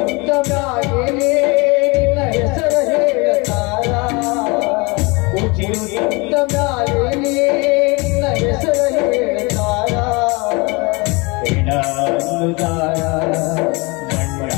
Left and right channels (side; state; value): right; quieter; 27.3 dB